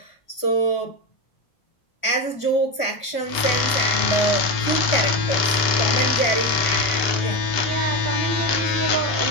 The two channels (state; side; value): late; right; 1.4 ms